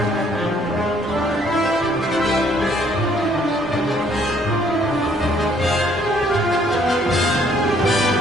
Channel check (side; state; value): both; normal; correlation 0.64